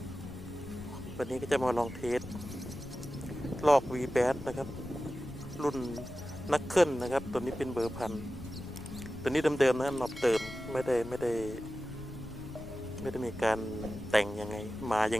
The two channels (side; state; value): left; noise; rumble, 13 dB below the sound